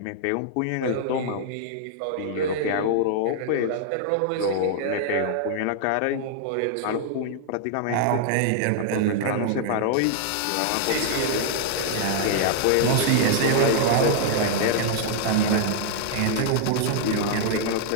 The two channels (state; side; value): different; both; correlation -0.01